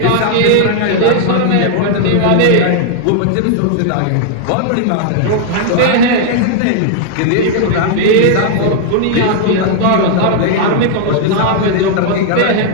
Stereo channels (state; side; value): different; both; correlation 0.00